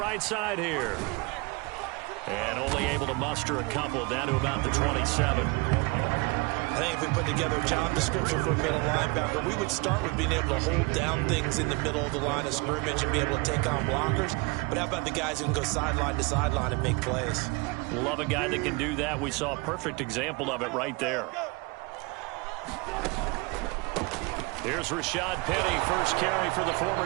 side here. And only able to muster a couple, down to about the 27. I think if we put together a job description for a middle linebacker, we would start with being able to hold down things in the middle of the line of scrimmage and be able to take on blockers. But how about the guys who can go sideline to sideline and make plays? Love a guy that can do that. We saw a perfect example of it right there. Here's Rashad Penny, first carry for the former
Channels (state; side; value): quieter; left; 27.1 dB